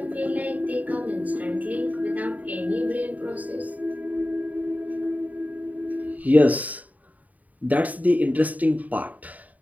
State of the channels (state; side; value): late; left; 0.074 ms